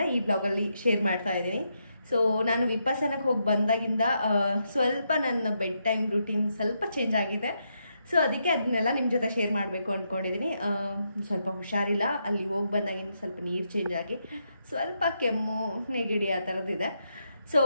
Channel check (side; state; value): both; inverted; correlation -0.81